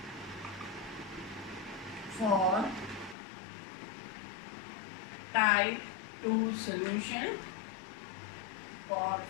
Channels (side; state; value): right; drops out; at 3.2 s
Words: for type 2 solution for